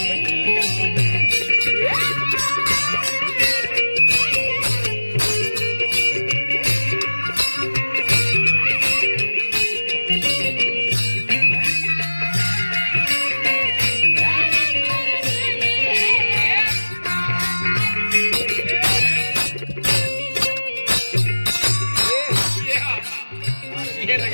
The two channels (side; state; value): both; inverted; correlation -1.00